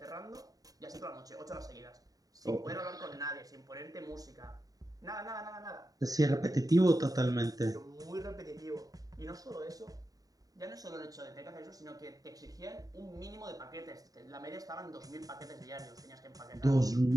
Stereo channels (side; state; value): left; late; 0.18 ms